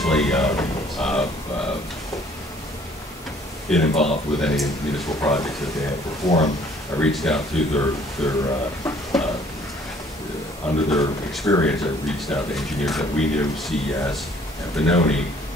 been involved with any municipal projects that they have performed, I reached out to under their experience, I reached out to engineers that we knew, CES and Benoni,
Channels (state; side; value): normal; both; correlation 0.58